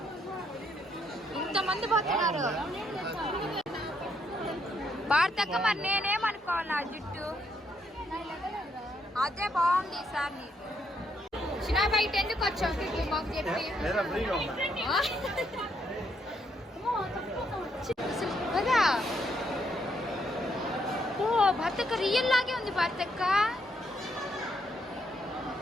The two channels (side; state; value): both; normal; correlation 0.75